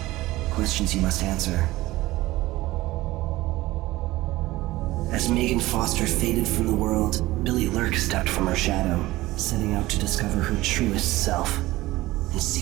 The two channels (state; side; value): quieter; left; 18.1 dB